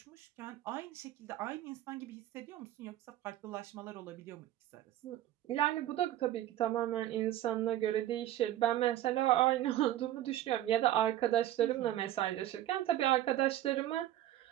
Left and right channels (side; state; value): left; quieter; 13.2 dB